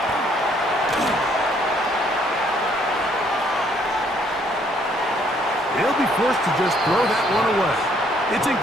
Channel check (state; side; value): normal; both; correlation 0.66